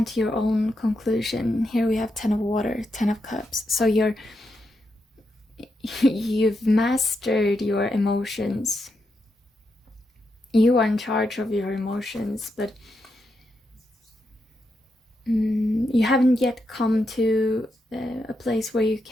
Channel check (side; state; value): both; normal; correlation 0.84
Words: to your own conclusion. Here we have 10 of water, 10 of cups. So you've mastered your emotions. You are in charge of your emotions, but you haven't yet come to a place where you